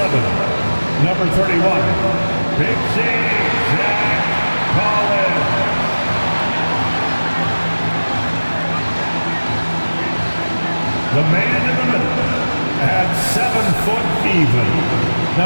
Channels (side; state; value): both; inverted; correlation -1.00